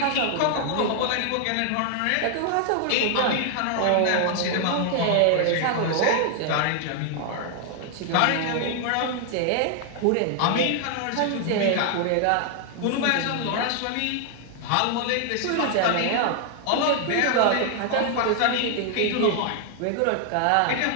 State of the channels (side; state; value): both; different; correlation 0.00